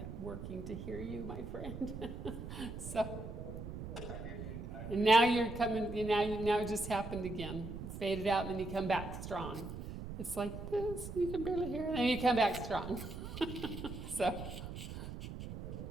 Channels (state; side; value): noise; right; rumble, 8 dB below the sound